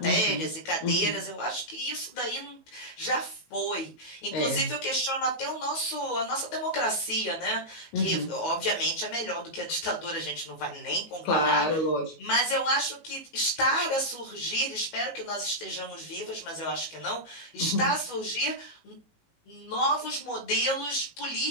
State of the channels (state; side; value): late; right; 19 ms